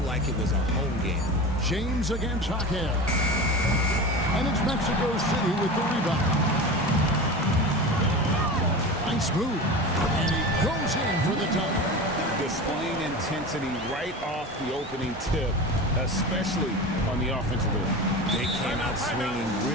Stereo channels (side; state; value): both; normal; correlation 0.29